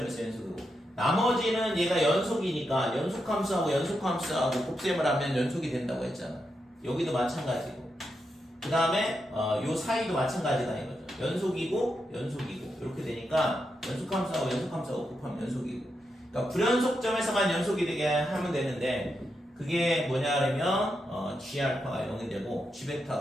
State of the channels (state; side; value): normal; both; correlation 0.85